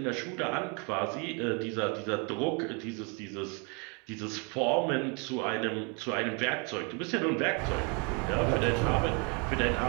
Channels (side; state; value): left; quieter; 34.1 dB